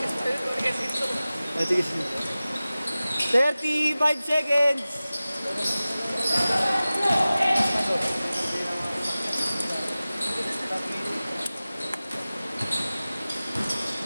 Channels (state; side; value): inverted; both; correlation -0.97